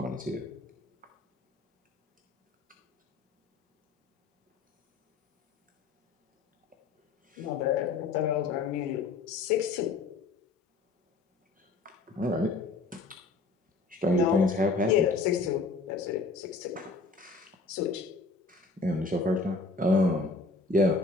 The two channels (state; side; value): quieter; right; 3.8 dB